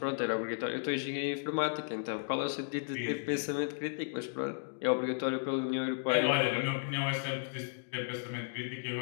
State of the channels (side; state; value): right; silent; digital silence